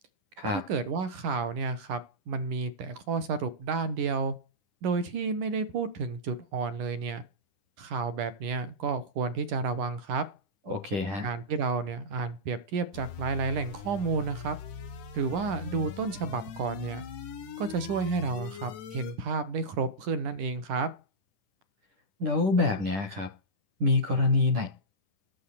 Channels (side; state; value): left; late; 10 ms